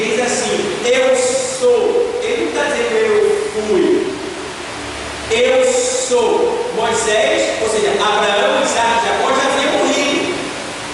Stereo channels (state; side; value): identical; both; correlation 1.00